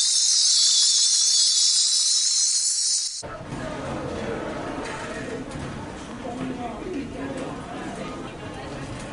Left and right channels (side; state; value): both; identical; correlation 1.00